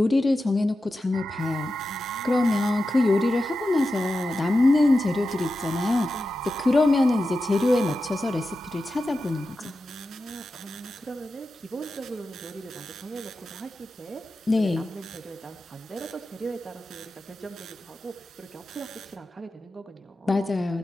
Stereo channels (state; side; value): normal; both; correlation 0.91